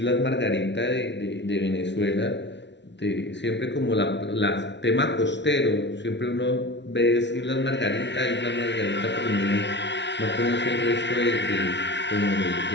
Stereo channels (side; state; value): right; late; 0.51 ms